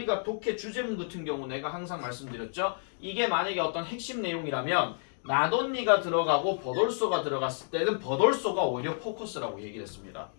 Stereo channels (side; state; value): right; silent; digital silence